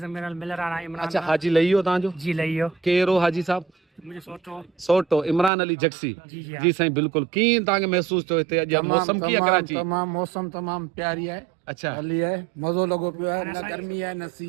मेरा मिल रहा है इमरान अच्छा, हाजी लही वियो तव्हांजो? जी लइयो केरो हाजी साहब? मुझे सोचो सोटो इमरान अली जक्सी। जी जी जी साईं बिल्कुल। कीअं तव्हांखे महसूस थियो हिते अॼु मौसम कीअं कराची? तमाम मौसम तमाम प्यारी है। अच्छा, हली है, मज़ो लॻो पियो आहे। न गर्मी है न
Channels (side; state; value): left; drops out; at 5.5 s